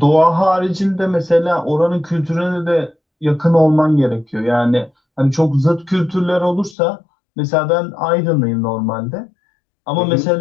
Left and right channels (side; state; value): right; drops out; at 6.8 s